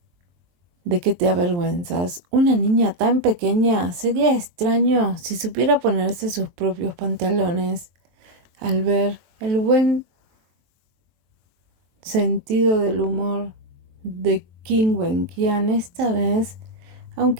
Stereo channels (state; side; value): late; left; 23 ms